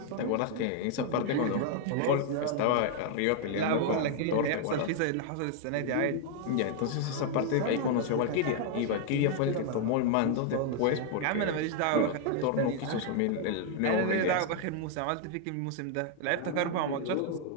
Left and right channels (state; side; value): different; both; correlation 0.00